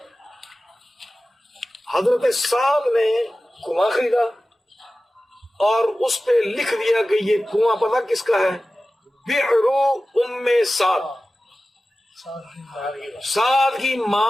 حضرت سعد نے کنواں خریدا اور اس پہ لکھ دیا کہ یہ کنواں پتہ کس کا ہے؟ بئر ام سعد, سعد کی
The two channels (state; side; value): normal; both; correlation 0.96